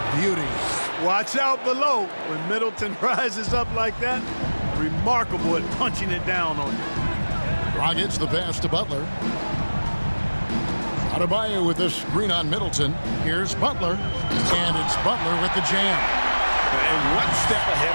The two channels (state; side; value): inverted; both; correlation -1.00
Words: beauty. Watch out below. When Middleton rises up like that, remarkable at punching it down on you. Dragic the pass to Butler. Adebayo with a screen on Middleton. Here's Butler. And it's Butler with the jam. And one step ahead